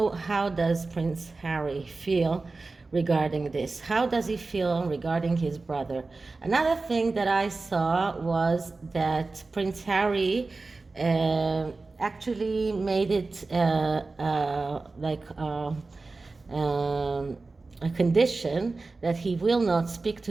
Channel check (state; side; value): quieter; left; 3.6 dB